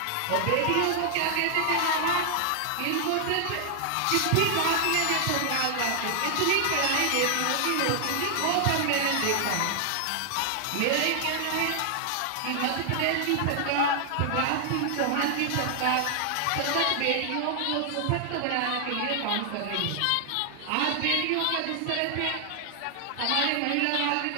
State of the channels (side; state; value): both; different; correlation 0.00